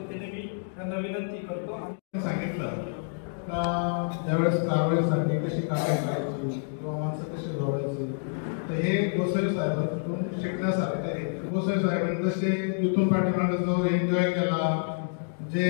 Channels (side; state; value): right; silent; digital silence